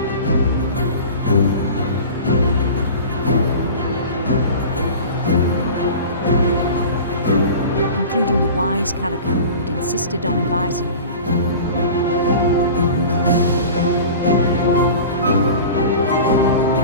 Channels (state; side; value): inverted; both; correlation -0.37